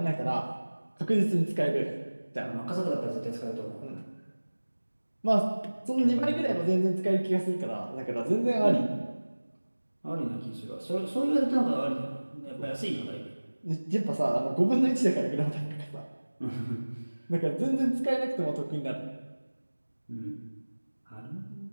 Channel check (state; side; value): inverted; both; correlation -1.00